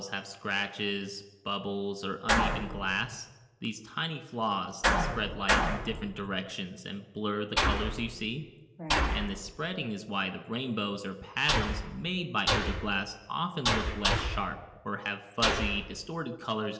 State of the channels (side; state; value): both; identical; correlation 1.00